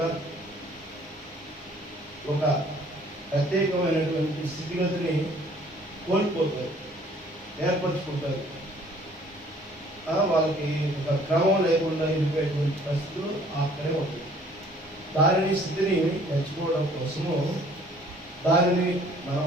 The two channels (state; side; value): normal; both; correlation 0.56